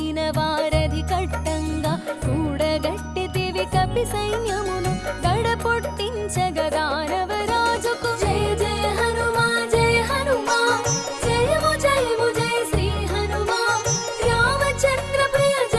వారధి కట్టంగా కూడగట్టితివి కపి సైన్యమును గడపొట్టించగా దానవరాజుకు. జయ జయ హనుమా జయ హనుమా జయము జయము జయ శ్రీ హనుమా రామచంద్ర ప్రియ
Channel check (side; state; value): both; identical; correlation 1.00